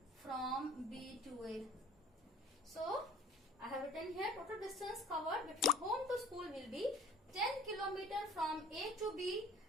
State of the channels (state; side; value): normal; both; correlation 0.48